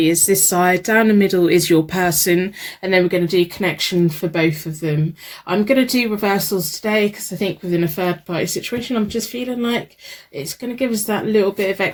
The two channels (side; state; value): both; identical; correlation 1.00